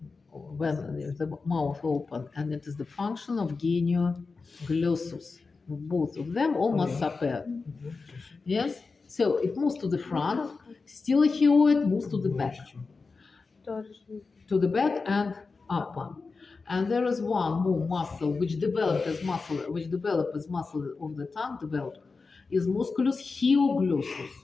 when the mouth open, and it is the function of genioglossus. Both of them almost separate. Yes, So it moves to the front, stylohyoid moves to the back. To the back and upper. And there is one more muscle which developed as muscle of the tongue developed is musculus hyoglossus.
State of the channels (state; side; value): quieter; right; 4.3 dB